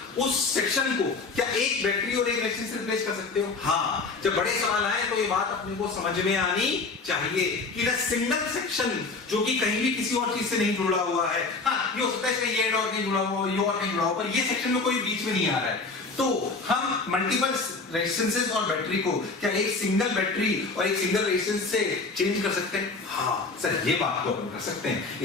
उस सेक्शन को क्या एक बैटरी और एक रेजिस्टेंस से रिप्लेस कर सकते हो? हाँ। जब बड़े सवाल आए तो ये बात अपने को समझ में आनी चाहिए कि ना सिंगल सेक्शन जो कि कहीं भी किसी और चीज से नहीं जुड़ा हुआ है, हाँ ये हो सकता है इसका ये और कहीं जुड़ा हुआ, ये और कहीं जुड़ा हुआ, पर ये सेक्शन में कोई बीच में नहीं आ रहा है, तो हम मल्टीपल रेजिस्टेंसेस और बैटरी को क्या एक सिंगल बैटरी और एक सिंगल रेजिस्टेंस से चेंज कर सकते हैं? हाँ सर, ये बात तो अपन कर सकते हैं,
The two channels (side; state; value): right; quieter; 4.0 dB